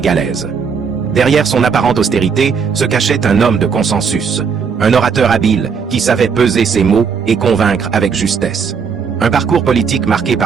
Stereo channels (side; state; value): left; quieter; 6.1 dB